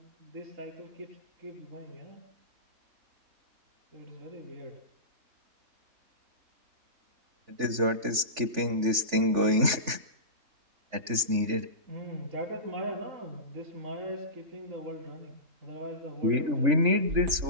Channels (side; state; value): left; late; 3.4 ms